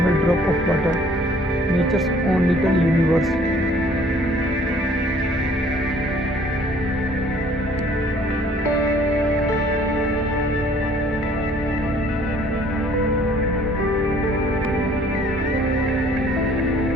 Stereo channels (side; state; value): both; normal; correlation 0.57